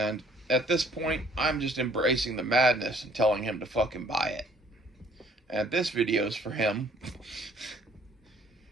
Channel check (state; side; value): normal; both; correlation 0.59